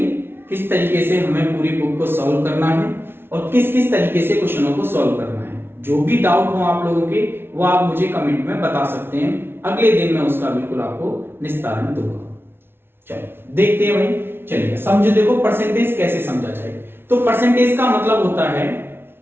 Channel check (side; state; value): left; late; 0.11 ms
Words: किस तरीके से हमें पूरी बुक को सॉल्व करना है और किस किस तरीके से क्वेश्चनों को सॉल्व करना है। जो भी डाउट हो आप लोगों के वो आप मुझे कमेंट में बता सकते हैं। अगले दिन मैं उसका बिल्कुल आपको निस्तारण दूंगा। चलो देखते हैं भाई, चलिए समझो। देखो, परसेंटेज कैसे समझा जाए। तो परसेंटेज का मतलब होता है